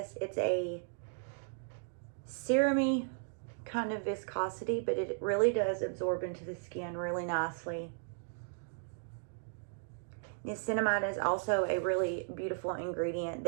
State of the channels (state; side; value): silent; left; digital silence